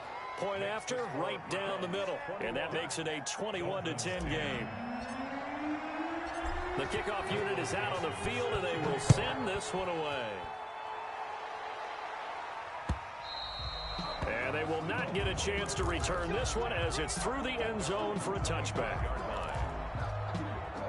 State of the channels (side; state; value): both; identical; correlation 1.00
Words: Point after, right down the middle. And that makes it a 21-10 game. The kickoff unit is out on the field, and they will send this one away. And they will not get a chance to return this one as it's through the end zone for a touchback.